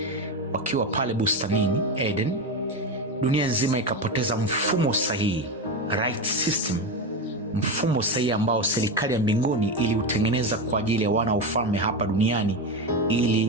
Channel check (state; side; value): normal; both; correlation 0.16